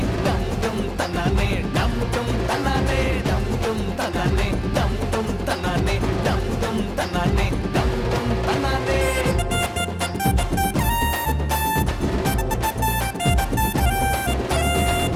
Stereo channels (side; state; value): both; identical; correlation 1.00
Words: டம் டும் தன்னானே, டம் டும் தன்னானே, டம் டும் தன்னானே, டம் டும் தன்னானே, டம் டும் தன்னானே, டம் டும் தன்னானே.